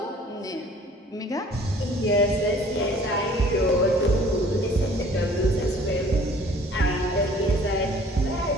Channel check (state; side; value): normal; both; correlation 0.53